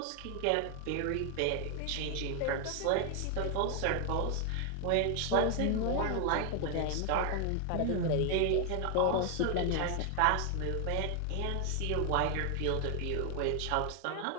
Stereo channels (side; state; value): both; different; correlation 0.00